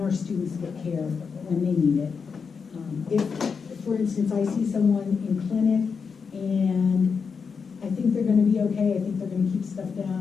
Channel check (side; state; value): right; quieter; 5.7 dB